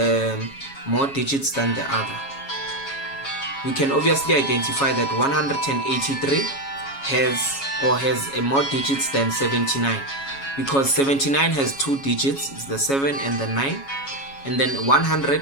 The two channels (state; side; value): late; right; 7.2 ms